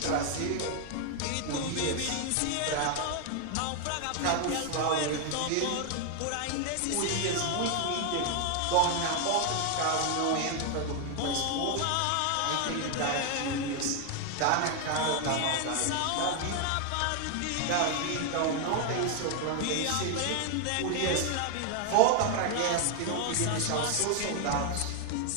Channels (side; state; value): both; different; correlation 0.00